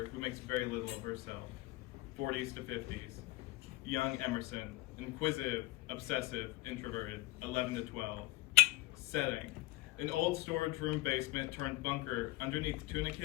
who makes very little of herself, 40s to 50s. Young Emerson, inquisitive, obsessive, introverted, 11 to 12. Setting: an old storage room basement turned bunker underneath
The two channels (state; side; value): quieter; right; 19.0 dB